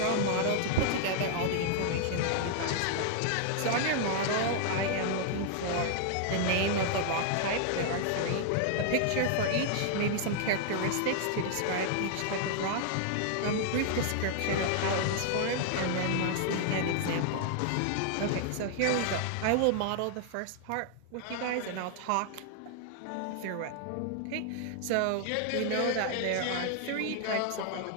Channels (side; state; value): both; different; correlation -0.01